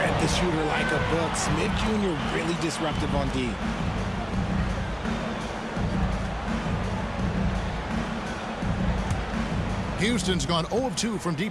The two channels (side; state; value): both; identical; correlation 1.00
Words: the shooter like a book. Smith Jr. really disruptive on D. Houston's gone 0 of 2 from